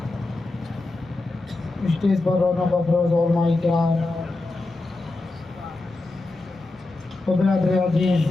اسٹیج پر رونق افروز علماء کرام و برادر عزیز،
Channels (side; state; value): right; quieter; 3.1 dB